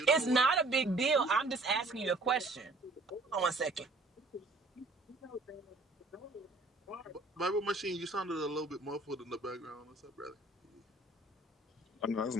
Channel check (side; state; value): left; quieter; 3.0 dB